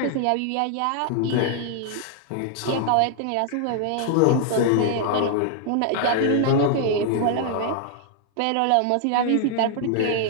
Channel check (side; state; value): both; different; correlation 0.00